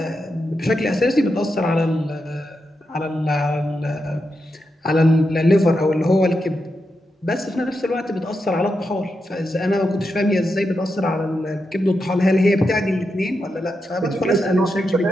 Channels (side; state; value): both; normal; correlation 0.86